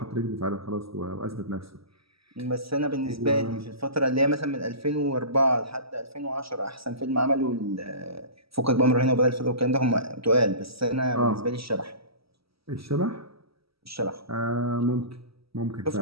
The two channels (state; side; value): late; left; 0.76 ms